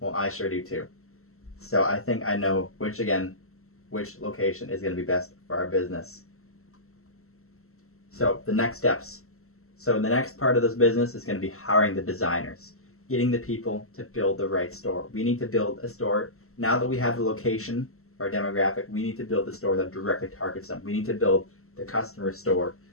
I sure do too. So I think I know which location is going to be best for our business. So the next steps. So the next part of this business is going to be hiring the designers, getting the people to build the right store. We need to build a store. Now that we have the location, our demographic, we need to build a store that directly targets them. We need to build the customer store.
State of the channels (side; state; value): right; late; 0.63 ms